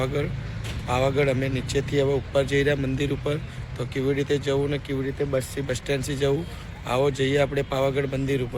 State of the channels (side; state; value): both; identical; correlation 1.00